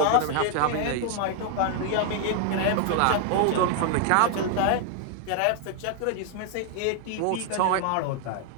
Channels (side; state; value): both; different; correlation 0.00